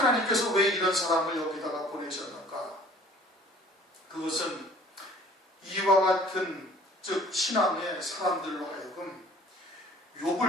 왜 이런 사람을 여기다가 보내셨는가? 그것은 이와 같은 즉 신앙의 사람들로 하여금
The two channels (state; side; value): normal; both; correlation 0.52